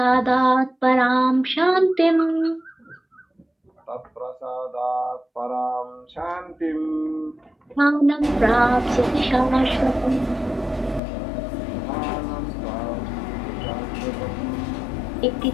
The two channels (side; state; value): right; drops out; at 11.0 s